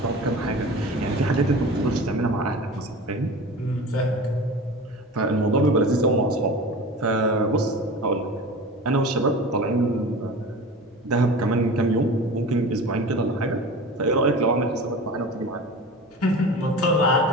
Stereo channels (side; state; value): both; normal; correlation 0.34